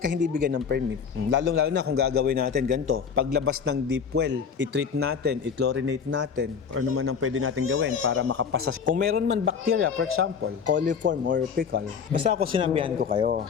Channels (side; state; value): right; quieter; 6.6 dB